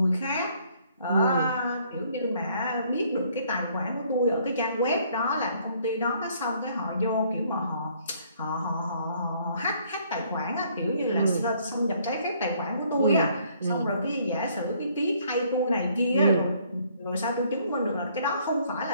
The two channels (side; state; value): both; inverted; correlation -0.64